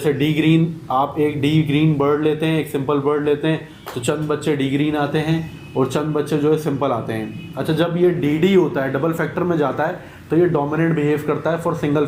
डी ग्रीन, आप एक डी ग्रीन बर्ड लेते हैं, एक सिंपल बर्ड लेते हैं, तो चंद बच्चे डी ग्रीन आते हैं और चंद बच्चे जो है सिंपल आते हैं। अच्छा, जब ये डी होता है, डबल फैक्टर में जाता है, तो ये डोमिनेंट बिहेव करता है फॉर सिंगल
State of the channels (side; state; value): both; identical; correlation 1.00